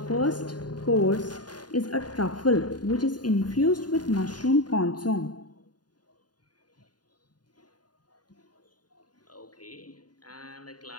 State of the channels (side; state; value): right; late; 0.70 ms